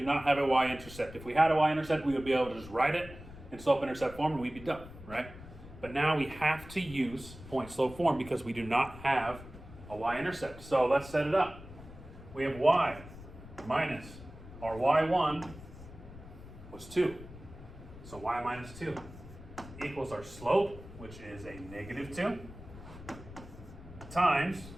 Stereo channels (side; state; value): left; noise; rumble, 16 dB below the sound